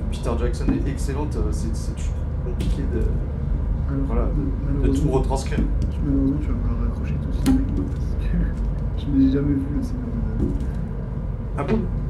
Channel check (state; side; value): identical; both; correlation 1.00